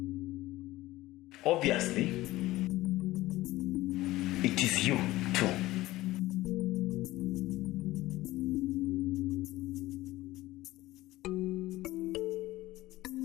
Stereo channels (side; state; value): right; quieter; 17.4 dB